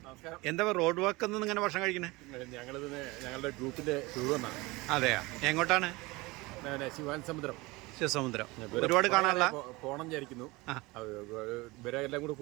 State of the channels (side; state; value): left; quieter; 22.7 dB